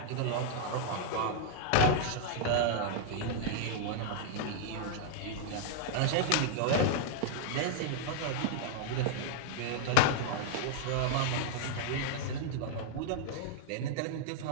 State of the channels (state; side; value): different; both; correlation -0.01